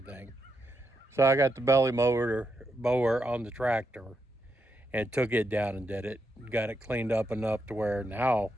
So I got the belly mower on the tractor and took it down and did it. Got it cleaned up enough to where now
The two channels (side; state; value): both; normal; correlation 0.83